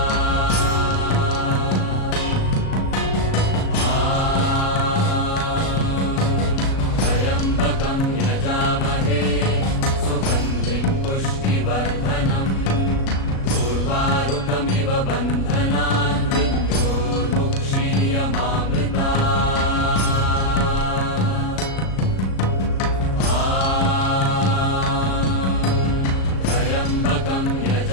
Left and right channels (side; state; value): right; late; 37 ms